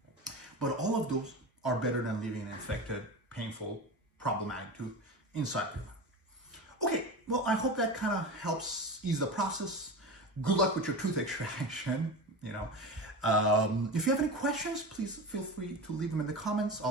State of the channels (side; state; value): both; normal; correlation 0.27